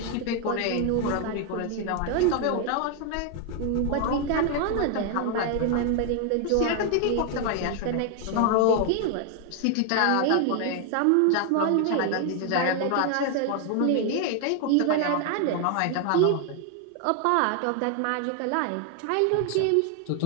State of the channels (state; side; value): different; both; correlation 0.01